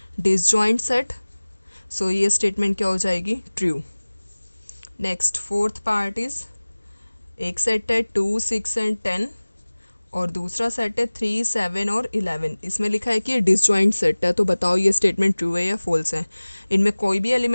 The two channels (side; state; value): both; inverted; correlation -1.00